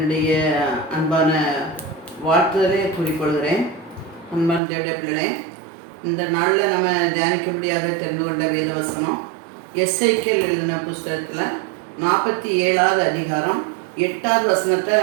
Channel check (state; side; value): drops out; left; at 4.6 s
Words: அன்பான வாழ்த்துதலை கூறிக்கொள்கிறேன். அன்பான தேவடைய பிள்ளைகளே, இந்த நாளில் நம்ம தியானிக்கும்படியாக தெரிந்து கொண்ட வேதவசனம் எஸ்ஐகேல் எழுதின புஸ்தகத்தில் 47வது அதிகாரம் 8வது வசனத்தை